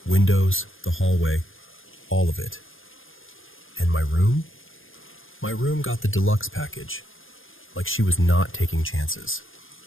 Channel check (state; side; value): late; right; 0.59 ms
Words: windows, the hallway, all of it. And my room? My room got the deluxe package, like she was not taking chances.